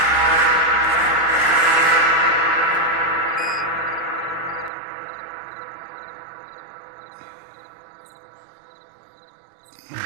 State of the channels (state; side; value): drops out; left; at 4.7 s